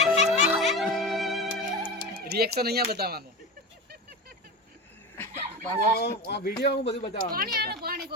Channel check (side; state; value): both; normal; correlation 0.25